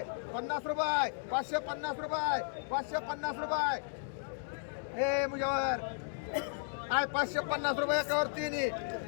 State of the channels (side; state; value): right; silent; digital silence